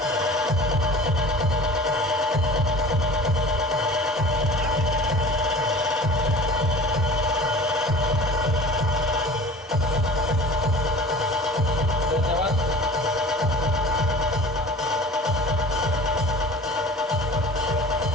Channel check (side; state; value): both; normal; correlation 0.41